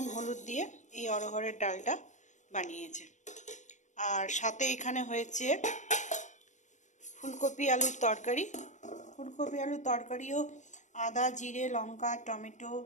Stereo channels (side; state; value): right; late; 0.35 ms